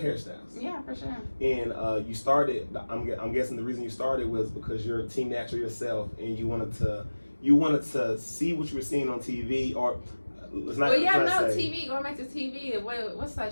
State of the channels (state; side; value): inverted; both; correlation -1.00